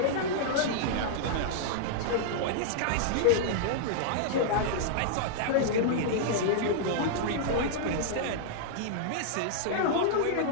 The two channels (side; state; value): both; different; correlation -0.01